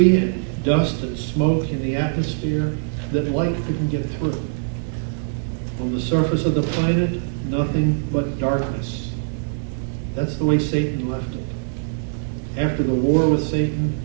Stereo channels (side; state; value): left; silent; 64 dB below the other